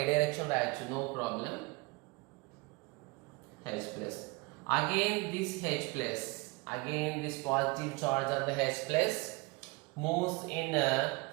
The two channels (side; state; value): left; quieter; 25.8 dB